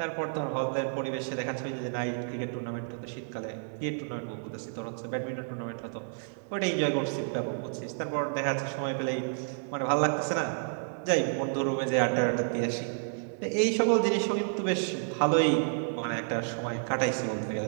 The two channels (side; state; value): left; silent; 57 dB below the other